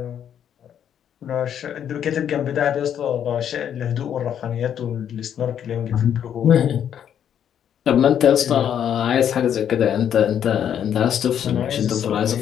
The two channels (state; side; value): quieter; right; 9.3 dB